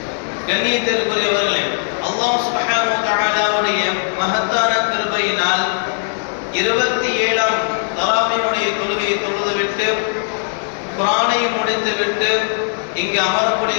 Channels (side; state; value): right; silent; 61 dB below the other